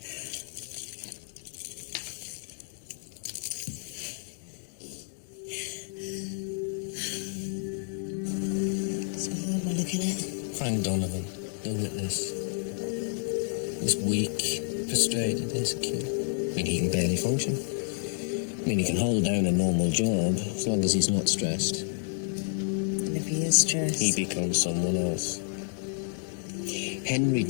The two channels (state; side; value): silent; right; 58 dB below the other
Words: So who am I looking at? Frank Donovan, the witness. He's weak, frustrated, insecure. I mean, he can barely function. I mean, he can hold down a normal job as long as he's not stressed. And if he is stressed? He becomes someone else. Henry